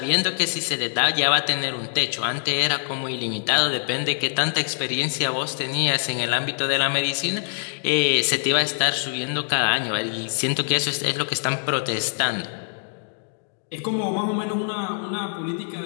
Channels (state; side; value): silent; right; 63 dB below the other